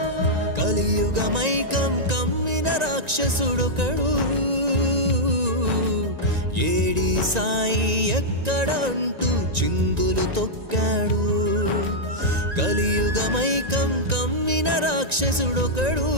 కలియుగమైకం కమ్మిన రాక్షసుడొకడు ఏడి సాయి ఎక్కడ అంటూ చిందులు తొక్కాడు. కలియుగమైకం కమ్మిన రాక్షసుడొకడు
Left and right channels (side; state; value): left; late; 1.9 ms